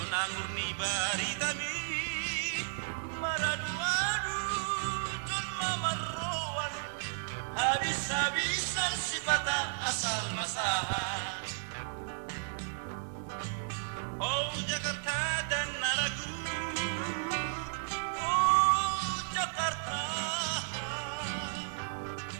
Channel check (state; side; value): silent; left; digital silence